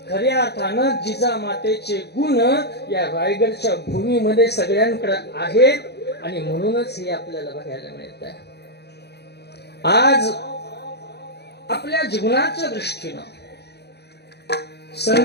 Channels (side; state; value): right; late; 0.48 ms